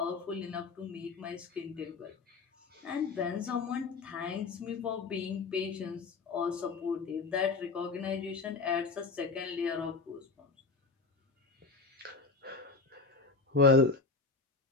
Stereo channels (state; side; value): quieter; right; 4.1 dB